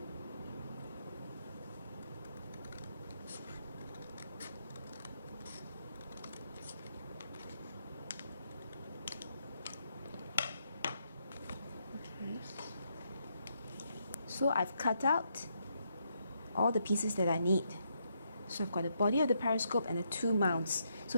So I've cut out all the pieces that I need. So I've got the body of the periscope and the two mounts.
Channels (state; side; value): inverted; both; correlation -0.78